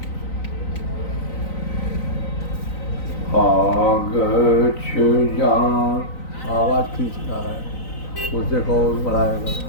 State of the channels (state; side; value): late; right; 3.9 ms